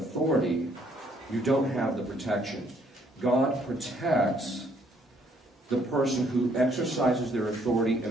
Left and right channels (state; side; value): normal; both; correlation 0.66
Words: you don't have the protection. God protects the person who exercises their authority in